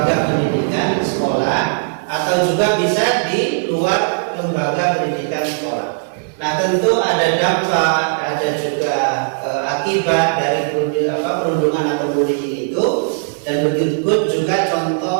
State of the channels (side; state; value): left; silent; 57 dB below the other